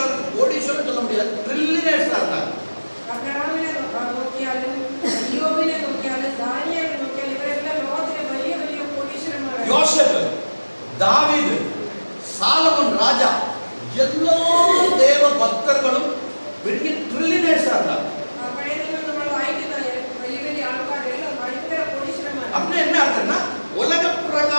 சொல்ல முடியாது, ட்ரில்லியனர்ஸா இருந்தாங்க. ஆபிரகாமினை நோக்கியாலும் யோபினை நோக்கியாலும் தானியேலை நோக்கியாலும் இவரெல்லாம் லோகத்திலே பெரிய பெரிய கோடீஸ்வரன். யோசேப்பு, தாவீது, சாலமோன் ராஜா, எல்லா தேவ பக்தர்களும் பெரிய ட்ரில்லியனர்ஸா இருந்தாங்க. அப்படி என்ன அர்த்தம்னா, உலக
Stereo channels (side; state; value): both; inverted; correlation -1.00